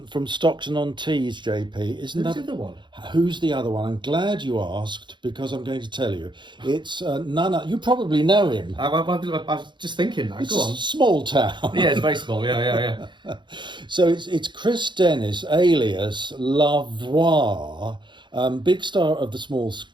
Stockton-on-Tees, JP. Isn't Who's that the other one? Who's the other one? I'm glad you asked, because I'm going to tell you. It's none other. You probably know him. I was just thinking that. It's Go on. a small town. Yeah, it's very small. Yeah. So it's Chris Dennis, alias Lavoie, Big star of the small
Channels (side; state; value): left; late; 0.23 ms